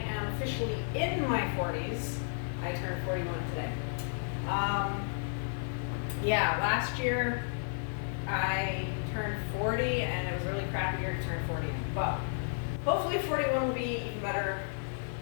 officially in my 40s. I turned 41 today. Last year I turned 40 and it was a really crappy year to turn 40. But hopefully 41 will be even better.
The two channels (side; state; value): right; silent; digital silence